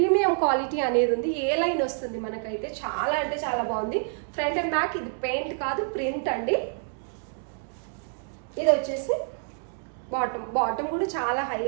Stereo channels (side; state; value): left; silent; digital silence